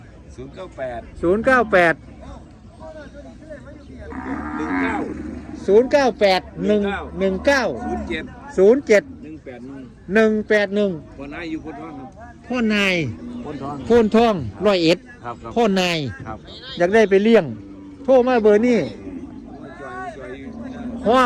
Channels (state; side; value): identical; both; correlation 1.00